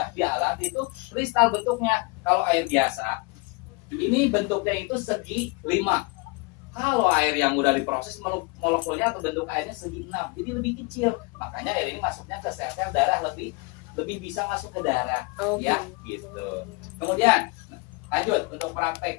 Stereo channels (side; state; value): right; quieter; 27.5 dB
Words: di alat itu kristal bentuknya. Kalau air biasa, ini bentuknya itu segi 5. Kalau air yang udah diproses, molekulnya atau bentuk airnya segi 6. Jadi lebih kecil. Makanya air ini masuknya ke sel-sel darah lebih bisa masuk ke darah. Ya, gitu. Kemudian lanjut untuk